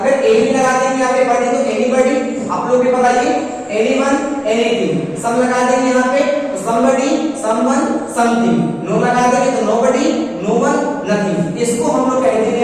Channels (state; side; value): identical; both; correlation 1.00